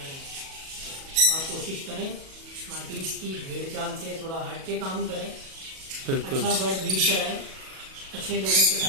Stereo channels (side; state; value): left; late; 37 ms